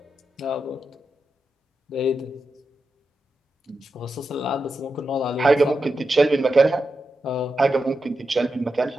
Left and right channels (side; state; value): both; normal; correlation 0.88